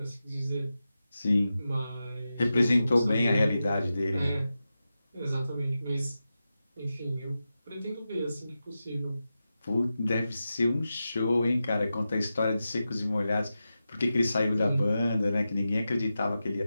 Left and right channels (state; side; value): inverted; both; correlation -0.92